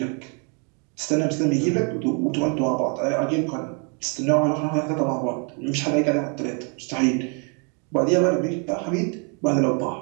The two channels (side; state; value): left; quieter; 37.1 dB